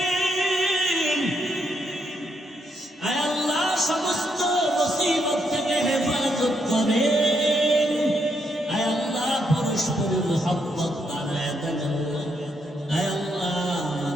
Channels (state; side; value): normal; both; correlation 0.78